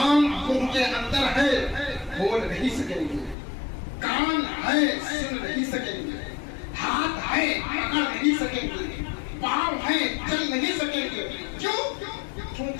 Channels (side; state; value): right; drops out; at 3.4 s